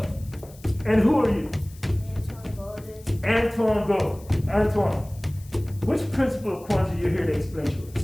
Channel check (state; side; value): noise; left; hiss, 24 dB below the sound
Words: and who are you? Antoine Gold. Antoine, which principle of Kwanzaa you're here to explain to us?